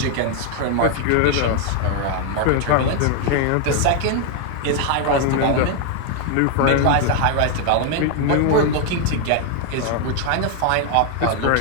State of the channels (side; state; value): both; different; correlation 0.00